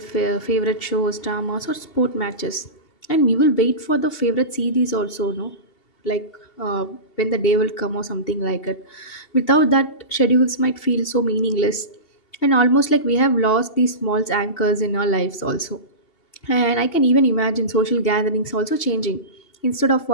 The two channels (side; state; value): right; late; 2.7 ms